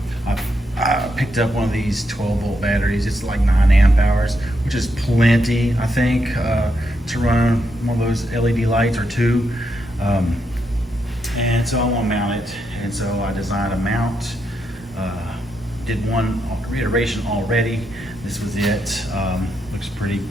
I picked up one of these 12 volt batteries. It's like 9 amp hours, which is plenty, I think, to run one of those LED lights or two. And so I want to mount it, and so I designed a mount. Did one reiteration already. This was it. Looks pretty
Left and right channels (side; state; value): both; normal; correlation 0.81